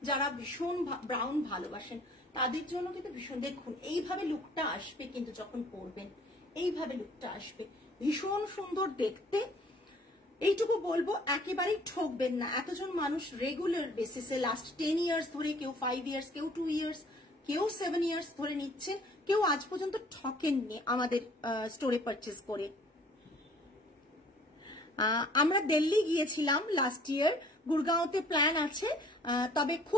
যারা ভীষণ ব্রাউন ভালোবাসেন, তাদের জন্য কিন্তু ভীষণ, দেখুন এইভাবে লুকটা আসবে কিন্তু যখন পরবেন, এইভাবে লুকটা আসবে, ভীষণ সুন্দর দেখতে। এইটুকু বলবো, একেবারেই ঠকবেন না। এতজন মানুষ রেগুলার বেসিসে লাস্ট 10 ইয়ার্স ধরে, কেউ 5 ইয়ার্স, কেউ 2 ইয়ার্স, কেউ 7 ইয়ার্স ধরে নিচ্ছে, কেউ আজ পর্যন্ত ঠকেননি আমাদের স্টোরে পারচেস করে। আমরা দিল্লি গিয়েছিলাম লাস্ট ইয়ার, গুরগাঁওতে প্ল্যান আছে, তবে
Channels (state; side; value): normal; both; correlation 0.55